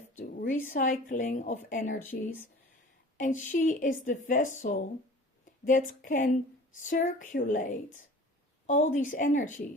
the recycling of energies. And she is the vessel that can circulate all these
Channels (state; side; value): normal; both; correlation 0.44